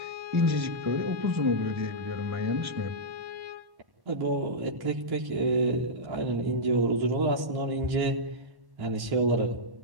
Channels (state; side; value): late; left; 1.1 ms